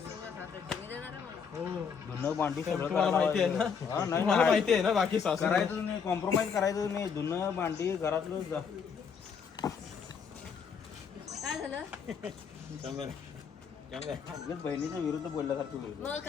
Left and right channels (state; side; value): quieter; right; 6.4 dB